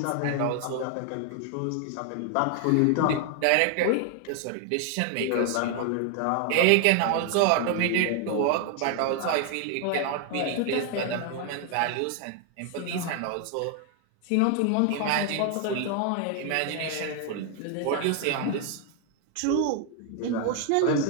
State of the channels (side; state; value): both; different; correlation 0.00